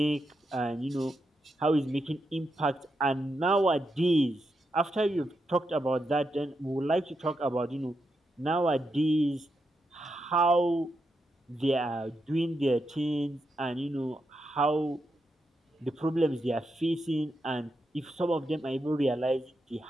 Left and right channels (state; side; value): normal; both; correlation 0.84